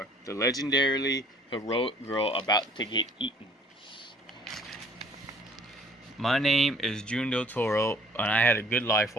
The legendarily heroic girl about to get eaten. My name is June Del Toro, and I had a good life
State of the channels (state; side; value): normal; both; correlation 0.55